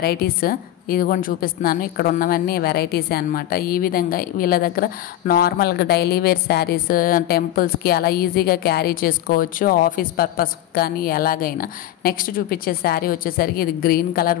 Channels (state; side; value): quieter; right; 13.1 dB